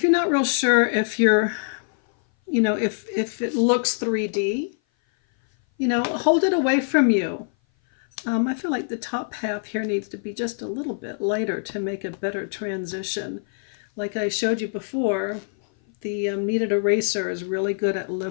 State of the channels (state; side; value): silent; right; 58 dB below the other